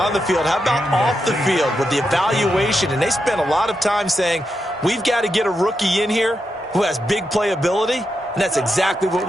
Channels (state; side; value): normal; both; correlation 0.85